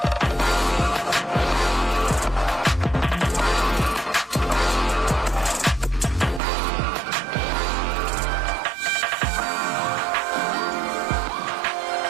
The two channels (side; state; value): left; drops out; at 6.4 s